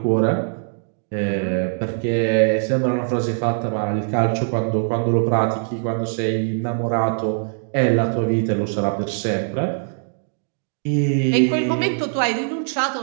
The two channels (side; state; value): left; silent; digital silence